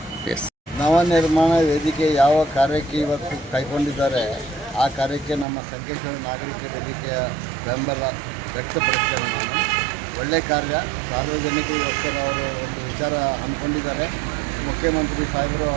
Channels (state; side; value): drops out; left; at 5.5 s